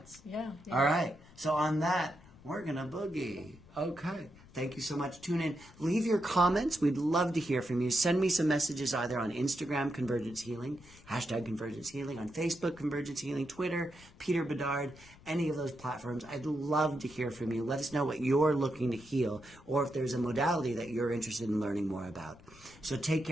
Yeah. All right. So on that, we're going to boogie. Okay. Thank you so much. Tune in. Leave your comments. We'd love to hear from you. Send me some messages either on Instagram, Convergence Healing, hashtag Convergence Healing, on Facebook, Convergence Healing, Twitter, Peter Bedard, any of those platforms. I'd love to hear from you. Let us know what you're looking to heal, or if there's a modality that you're interested in learning more about. So take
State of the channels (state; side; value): noise; left; rumble, 23 dB below the sound